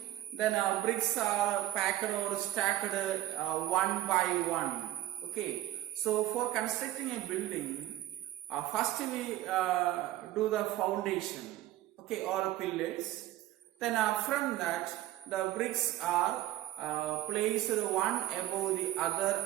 then bricks are packed or stacked one by one. Okay, so for constructing a building, first we do the foundation, okay, or pillars. Then from that, the bricks are placed one above the other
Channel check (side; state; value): left; quieter; 14.8 dB